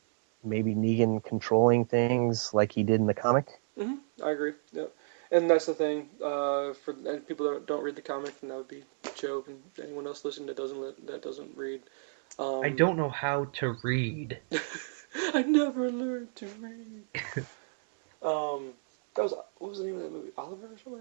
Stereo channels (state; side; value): silent; left; 57 dB below the other